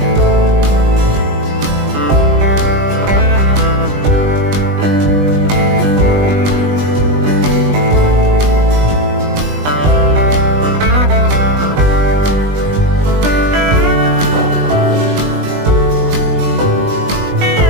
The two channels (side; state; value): left; late; 20 ms